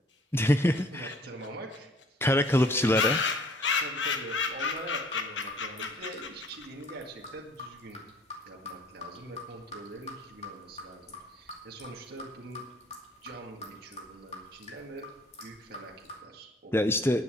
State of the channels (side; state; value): both; normal; correlation 0.55